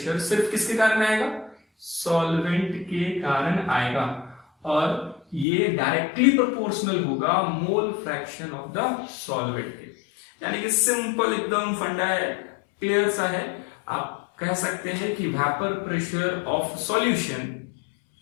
सिर्फ किसके कारण आएगा? सॉल्वेंट के कारण आएगा, और ये डायरेक्टली प्रोपोर्शनल होगा मोल फ्रैक्शन ऑफ द सॉल्वेंट के। यानी कि सिंपल एकदम फंडा है, क्लियर सा है। आप कह सकते हैं कि vapour pressure of solution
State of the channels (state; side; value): drops out; right; at 5.5 s